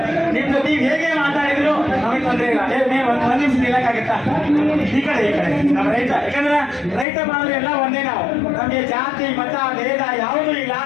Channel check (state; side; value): drops out; right; at 7.1 s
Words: ನಿಮ್ ಜೊತೆ ಹೇಗೆ ಮಾತಾಡಿದ್ರು ನಮಗೆ ತೊಂದರೆ ಇಲ್ಲ. ಒಂದ್ ನಿಮಿಷ ನಿಲ್ಲಕ್ಕಾಗತ್ತಾ? ಈ ಕಡೆ ನಮ್ಮ ರೈತ, ಯಾಕಂದ್ರೆ ರೈತ ಬಾಂಧವರು ಎಲ್ಲ ಒಂದೇ. ನಾವು ನಮಗೆ ಜಾತಿ ಮತ ಭೇದ ಯಾವುದೂ ಇಲ್ಲ.